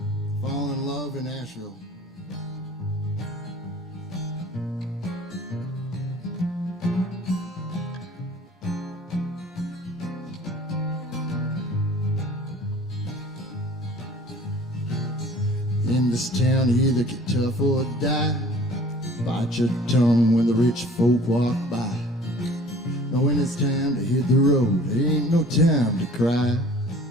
falling in love in Nashville. In this town, you either get tough or die. Bite your tongue when the rich folk walk by. Now when it's time to hit the road, there ain't no time to cry.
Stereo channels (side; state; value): both; normal; correlation 0.49